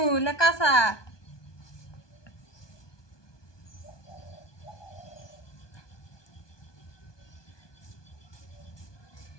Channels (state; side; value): late; right; 1.2 ms